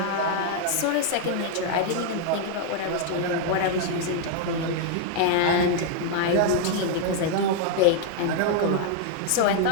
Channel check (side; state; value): both; different; correlation 0.00